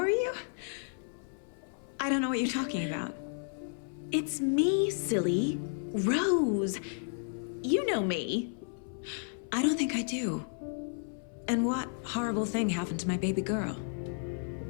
you? I don't know what you're talking about. It's me, silly. Rose. You know me. I don't think I do. And what horrible thing happened to my baby girl?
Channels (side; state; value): right; silent; 56 dB below the other